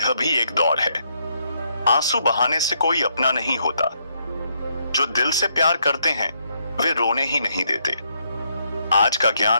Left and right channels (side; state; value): both; inverted; correlation -0.75